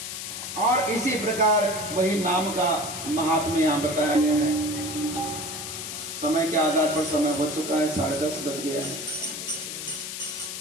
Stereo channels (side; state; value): left; noise; hiss, 7 dB below the sound